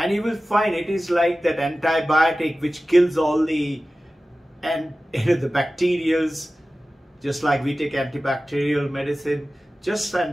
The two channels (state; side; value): normal; both; correlation 0.96